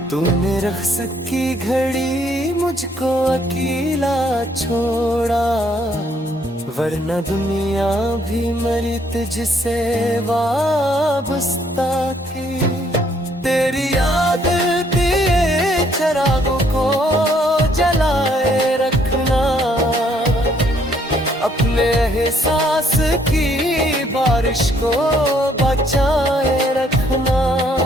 तूने रख्स की घड़ी मुझको अकेला छोड़ा, वरना दुनिया भी मरी तुझसे वाबस्ता थी। तेरी याद के चिरागों को जलाए रखना, अपने एहसास की बारिश को बचाए रखना।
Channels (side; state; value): both; normal; correlation 0.67